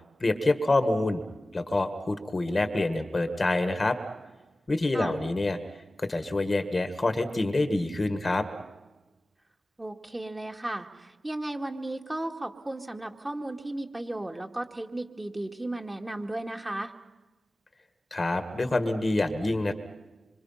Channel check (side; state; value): both; normal; correlation 0.96